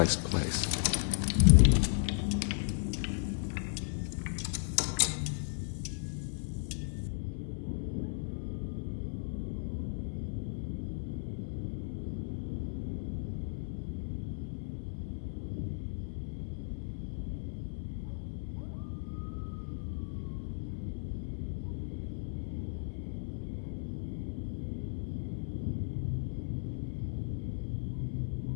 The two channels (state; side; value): silent; right; 54 dB below the other